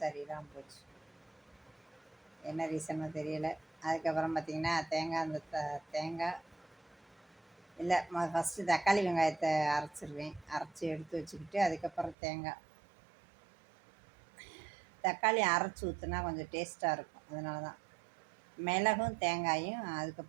சரியில்லாமல் போச்சு. என்ன ரீசனோ தெரியலை. அதுக்கப்புறம் பார்த்திங்கன்னா தேங்காய் இல்லை, ஃபஸ்ட்டு தக்காளி வெங்காயத்தை அரைச்சிடுவேன். அரைச்சி எடுத்து வச்சுக்கிட்டு அதுக்கப்புறம் தக்காளி அரைச்சி ஊற்றுனா கொஞ்சம் டேஸ்ட்டாக இருக்கும். அதனால தான் மிளகும் தேங்காயும்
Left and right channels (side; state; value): left; drops out; at 12.2 s